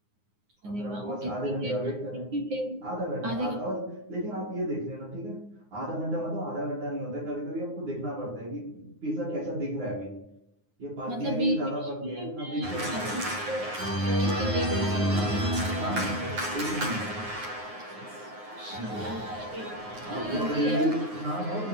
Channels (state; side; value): late; left; 9.6 ms